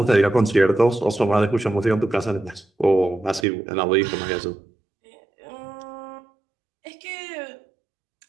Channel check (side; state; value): left; drops out; at 3.5 s